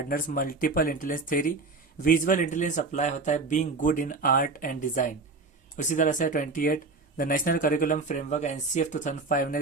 multiple intelligence theory visual intelligence apply होता है being good in art and design. उसी तरह से 28 the national curriculum framework NCF 2005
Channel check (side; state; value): left; quieter; 3.9 dB